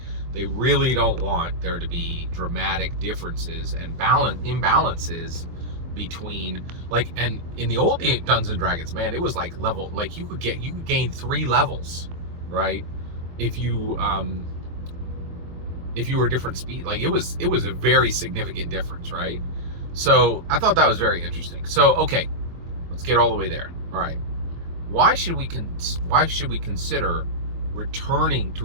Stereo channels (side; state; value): left; late; 23 ms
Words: really don't want there to be dramatic differences and imbalances between, like, and in the old Dungeons and Dragons, man, it was like level, like you could gain 3 levels, right? If you were different speed, like it was a very significant difference, right? So I thought that was very interesting. So okay, let's get all the way there. All right, why should we consider returning